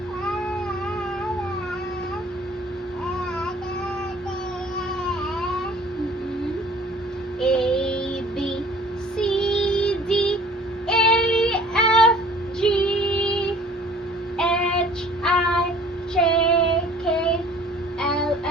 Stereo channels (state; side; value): normal; both; correlation 0.51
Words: A, B, C, D, E, F, G, H, I, J, K, L,